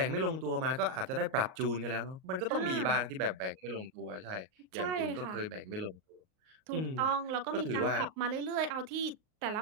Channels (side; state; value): left; late; 38 ms